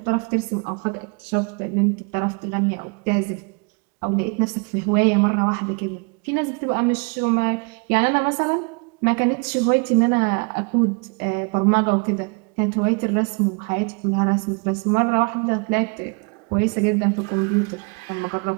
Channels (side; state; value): left; quieter; 33.6 dB